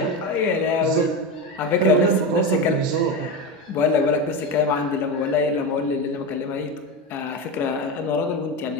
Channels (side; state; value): both; normal; correlation 0.18